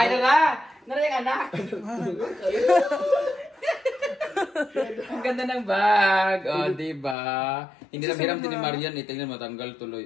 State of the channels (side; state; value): right; drops out; at 7.2 s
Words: nara! Nara yung anak! Ang ganda ng bag. O, oh, diba? Hindi na hiram din ni Marian eh. Tingnan matanggal tuloy,